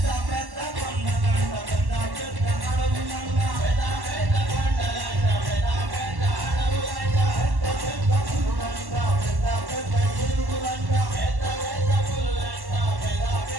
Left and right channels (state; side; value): late; left; 1.1 ms